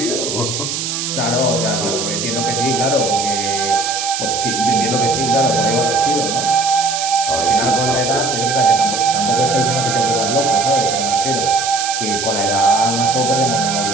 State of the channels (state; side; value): noise; right; hiss, 3 dB below the sound